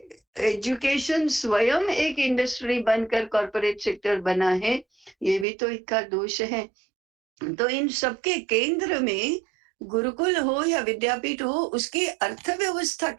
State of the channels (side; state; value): left; drops out; at 5.5 s